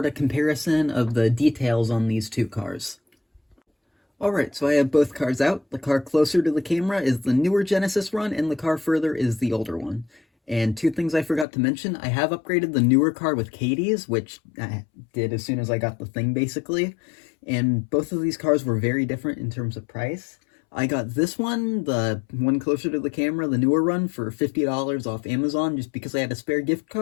of comparison of the details on these two cars. Alright, so I have both cars out. The car closer to the camera is the newer Genesis run, and the car further is the older one. And two things I forgot to mention, I have upgraded the newer car with Katie's, which I did as soon as I got the thing, basically. And both of these cars were very different in terms of price. I got this one, the one closer to the camera, the newer run, for $50 off Amazon just because I had a spare gift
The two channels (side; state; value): right; drops out; at 11.5 s